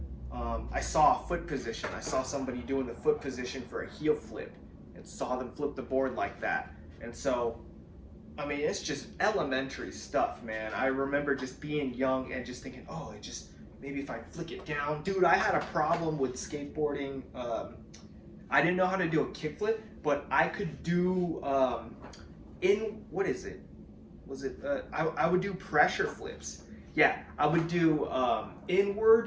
I saw a foot position. I saw somebody doing the foot position for a heel flip, and saw them flip the board like that. And so, I mean, it's just elementary stuff, man. I remember just being young and just thinking, oh, maybe if I flick it down. Dude, I had a problem with skateboarding. I didn't know how to do a kickflip, but I could do, what is it? I would do pressure flips. Yeah, I would do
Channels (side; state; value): both; identical; correlation 1.00